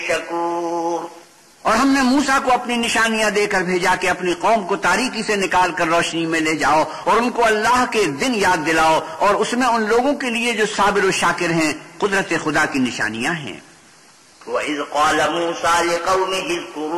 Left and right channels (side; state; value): both; identical; correlation 1.00